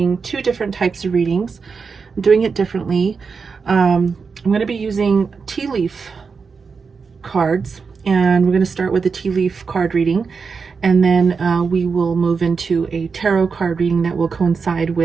two different types of readings. I'm doing it differently. I'm going to be using tea leaf cards, and we're going to start with the tea leaf card reading, and then we will move into a tarot card reading that will coincide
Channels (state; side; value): quieter; left; 5.2 dB